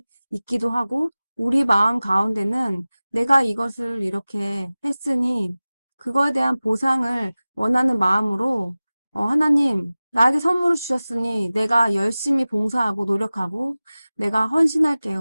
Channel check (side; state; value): both; inverted; correlation -0.97